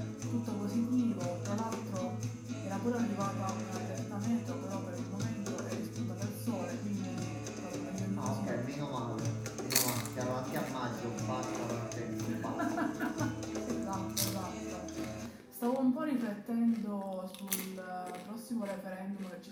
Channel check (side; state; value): both; identical; correlation 1.00